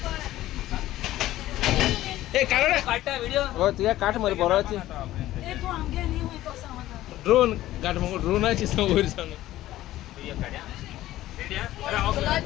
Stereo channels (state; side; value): quieter; right; 15.0 dB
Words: ए काढ काटा व्हिडिओ हो तुझ्या काठ मध्ये बोराची ये तो आगे नहीं हुई तो समझा ड्रोन काठ मग ड्रोनाची समोर सांग रेडिया